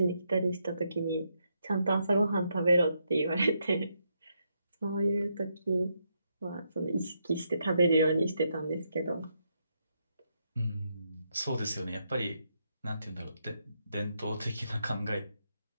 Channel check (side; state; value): both; inverted; correlation -0.80